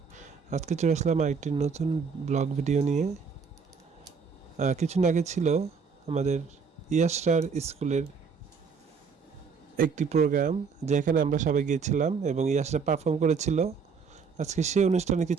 আজকে চলে আসলাম আরেকটি নতুন ব্লগ ভিডিও নিয়ে। কিছুদিন আগে ছিল আমাদের ইয়াসরার স্কুলের একটি প্রোগ্রাম, যেখানে আমরা সবাই গিয়েছিলাম এবং ইয়াসরা পারফর্ম করেছিল। আজকে সেই অনুষ্ঠানের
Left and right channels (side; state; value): left; quieter; 5.7 dB